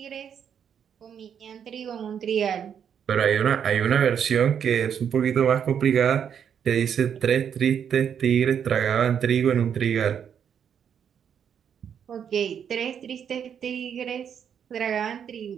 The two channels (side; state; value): left; quieter; 8.1 dB